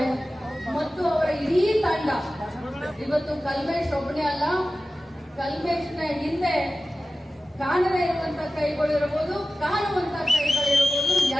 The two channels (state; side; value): normal; both; correlation 0.95